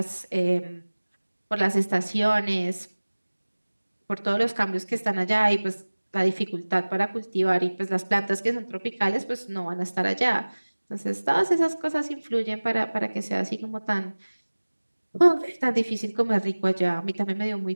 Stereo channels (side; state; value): both; inverted; correlation -1.00